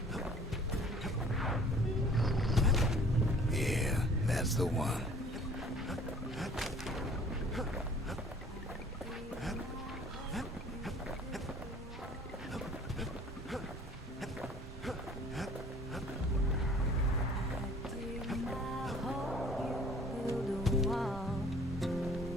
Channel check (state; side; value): normal; both; correlation 0.52